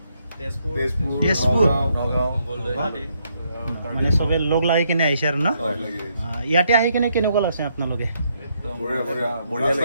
তেজপুৰ মানে চবে লগ লাগি কিনে আহিছে আৰু না ইয়াতে আহি কিনে কেনেকুৱা লাগছে আপোনালোকে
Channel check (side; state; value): both; inverted; correlation -0.75